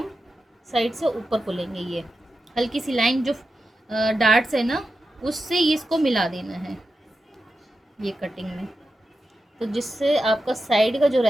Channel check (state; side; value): normal; both; correlation 0.90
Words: साइड से ऊपर को लेंगे। ये हल्की सी लाइन जो डार्ट्स है ना, उससे इसको मिला देना है ये कटिंग में, तो जिससे आपका साइड का जो